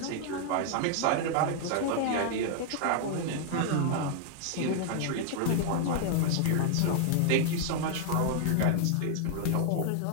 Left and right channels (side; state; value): both; different; correlation 0.00